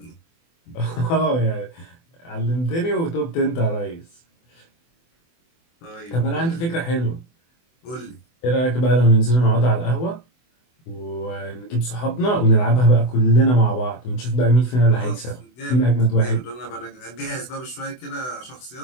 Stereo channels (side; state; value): right; late; 24 ms